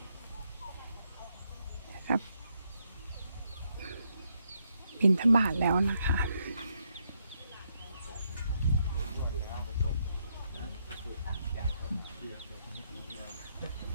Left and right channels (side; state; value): both; inverted; correlation -0.77